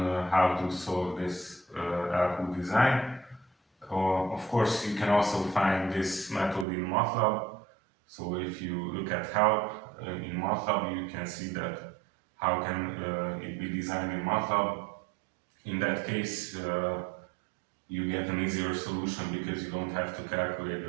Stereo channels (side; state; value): left; drops out; at 6.7 s